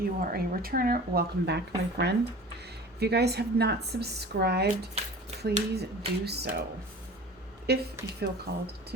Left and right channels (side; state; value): both; normal; correlation 0.40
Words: are a returner, welcome back, my friend. If you guys have not subscribed, please do so if you feel called to